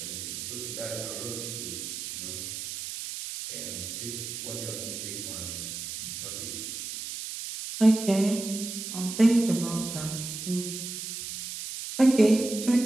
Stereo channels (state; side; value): noise; right; hiss, 7 dB below the sound